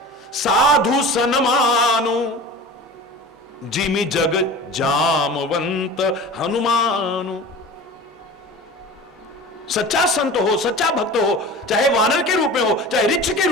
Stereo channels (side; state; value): both; normal; correlation 0.36